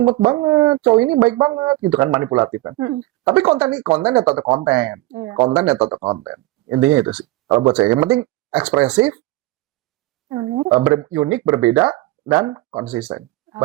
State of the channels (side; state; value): left; quieter; 18.5 dB